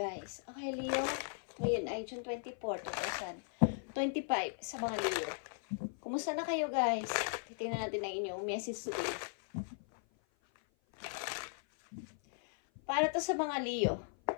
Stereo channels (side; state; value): right; silent; 53 dB below the other